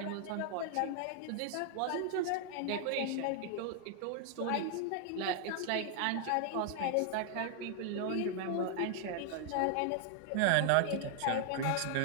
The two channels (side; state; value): both; different; correlation 0.00